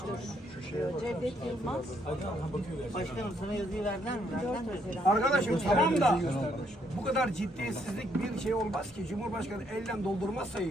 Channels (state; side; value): normal; both; correlation 0.72